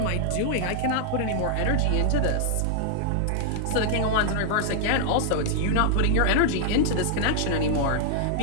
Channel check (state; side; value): different; both; correlation -0.01